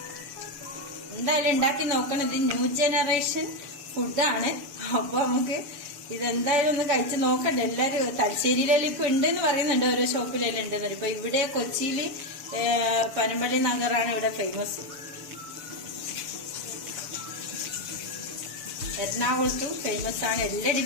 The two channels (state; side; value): late; left; 6.9 ms